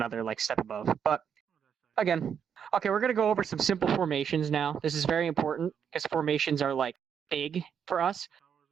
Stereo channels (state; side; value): quieter; left; 7.7 dB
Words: step above. But again, Okay, we're gonna go over some simple formations now. This is very important because formations are like big for us.